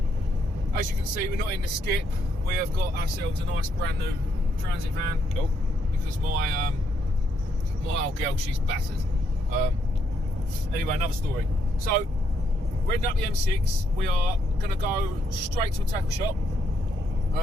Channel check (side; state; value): both; normal; correlation 0.75